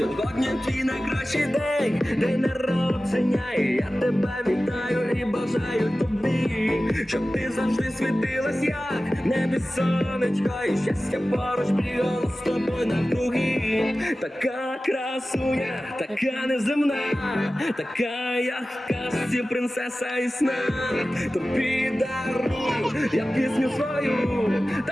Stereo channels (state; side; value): normal; both; correlation 0.96